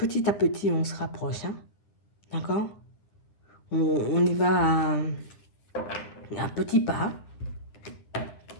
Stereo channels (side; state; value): right; late; 9.4 ms